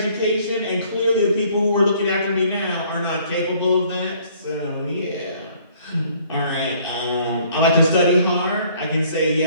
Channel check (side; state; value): both; inverted; correlation -0.59